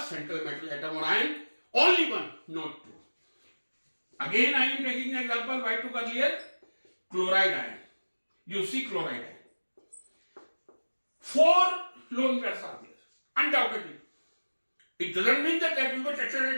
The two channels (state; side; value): inverted; both; correlation -1.00